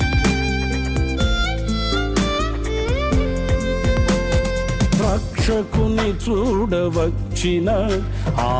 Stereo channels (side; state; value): both; identical; correlation 1.00